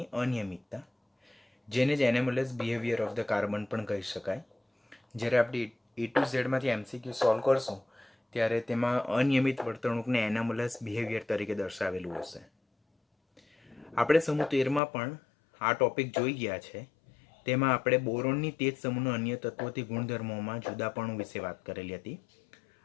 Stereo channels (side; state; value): right; drops out; at 14.8 s